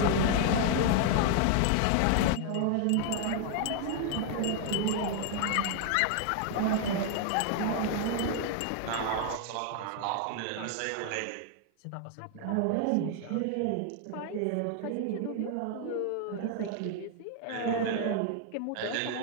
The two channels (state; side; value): different; both; correlation 0.00